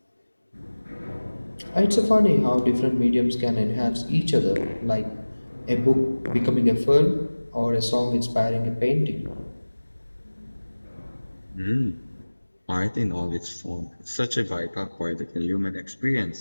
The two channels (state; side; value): inverted; both; correlation -1.00